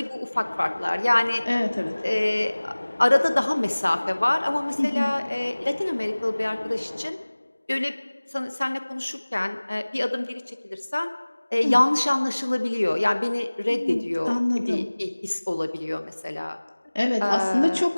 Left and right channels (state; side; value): inverted; both; correlation -1.00